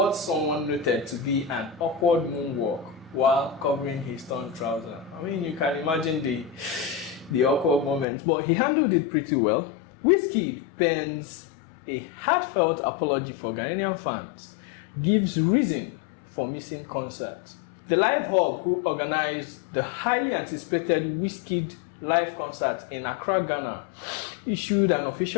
someone noted to be an awkward moonwalk while covering his torn trouser. I mean, you can imagine the awkward moments, but he handled it pretty well. Wizkid pens a heartfelt apology for Ghanaian fans, gives reason for missing concerts. The Live Hub, who organized the highly anticipated Wizkid live concert in Accra, Ghana, issued an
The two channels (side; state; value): right; drops out; at 8.1 s